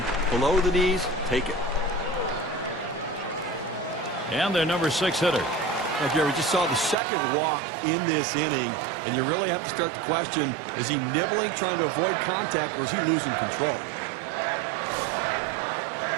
below the knees, take it. And their number 6 hitter. Now, Gary, we just saw the second walk in this inning, and you really have to start to question, is he nibbling, trying to avoid contact, or is he losing control?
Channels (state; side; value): drops out; left; at 7.0 s